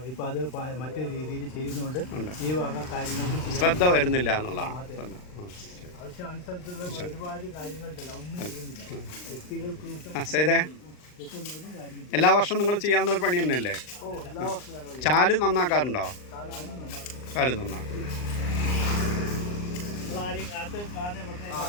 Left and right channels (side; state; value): right; late; 39 ms